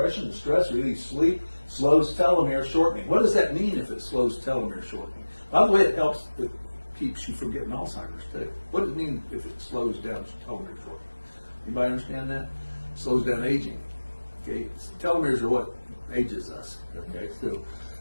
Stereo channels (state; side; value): inverted; both; correlation -1.00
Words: and stress, relieves sleep, slows telomere shortening. What does that mean if it slows telomere shortening? By the way, it keeps you from getting Alzheimer's too. What does it mean if it slows down telomere shortening? Anybody understand that? It slows down aging. Okay, telomeres are what ages us. Okay, so